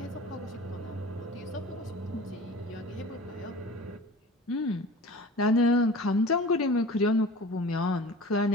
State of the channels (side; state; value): both; normal; correlation 0.39